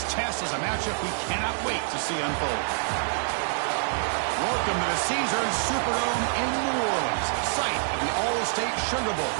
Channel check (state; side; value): silent; left; digital silence